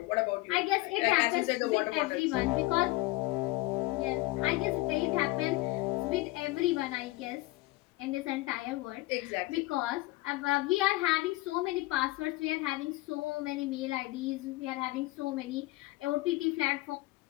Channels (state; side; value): quieter; right; 19.9 dB